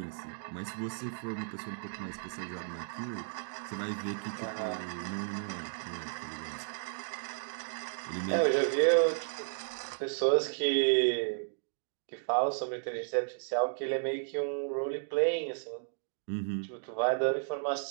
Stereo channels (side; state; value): left; silent; digital silence